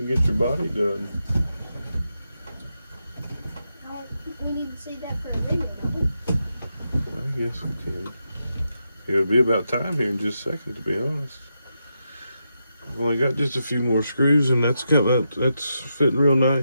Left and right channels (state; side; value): inverted; both; correlation -0.86